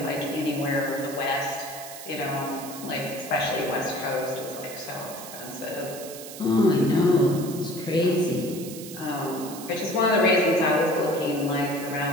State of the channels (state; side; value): noise; right; hiss, 13 dB below the sound